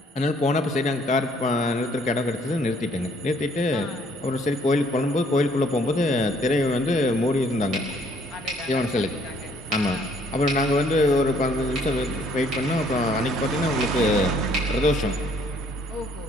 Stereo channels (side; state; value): both; normal; correlation 0.63